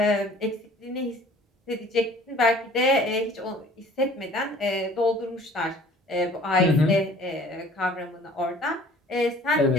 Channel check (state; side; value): normal; both; correlation 0.51